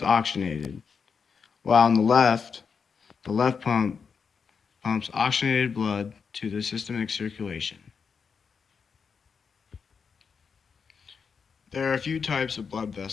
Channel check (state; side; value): quieter; right; 5.9 dB